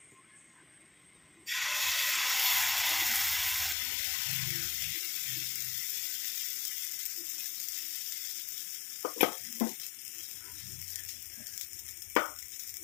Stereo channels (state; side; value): drops out; right; at 3.8 s